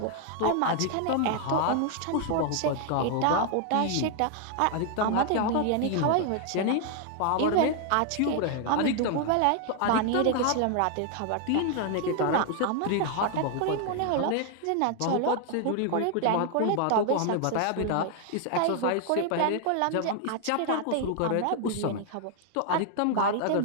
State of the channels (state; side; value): different; both; correlation 0.00